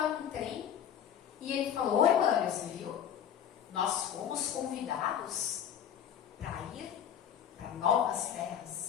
num trem e ele falou, oi, Mânia, você viu? Nós fomos convidados para ir para novas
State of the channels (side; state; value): right; quieter; 9.1 dB